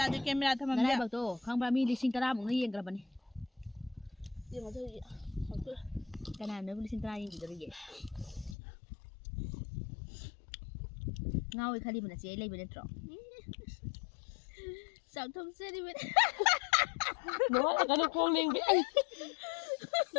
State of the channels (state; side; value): drops out; right; at 8.6 s